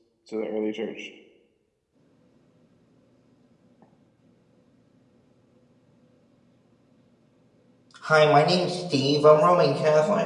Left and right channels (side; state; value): both; identical; correlation 1.00